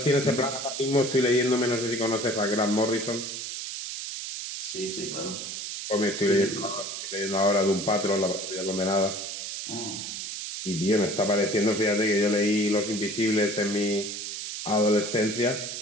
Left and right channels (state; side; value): noise; right; hiss, 6 dB below the sound